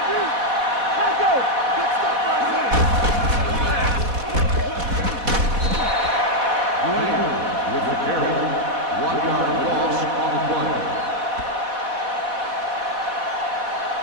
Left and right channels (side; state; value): left; late; 4.1 ms